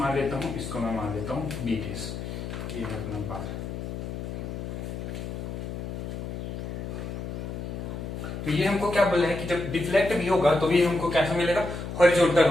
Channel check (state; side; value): noise; left; hum, 6 dB below the sound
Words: लेता हूँ, इसको मैं मान लेता हूँ बी डेस। ये है अपना बार। तो ये हमको क्या बोला है कि जब डिफ्लेक्ट भी होगा तो ये हमको कैसा मिलेगा? हॉरिजॉन्टल